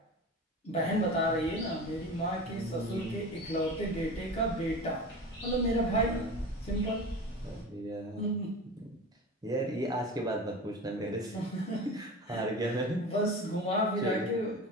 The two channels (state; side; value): normal; both; correlation 0.32